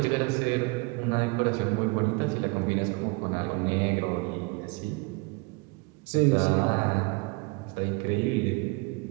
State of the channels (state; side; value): quieter; left; 28.0 dB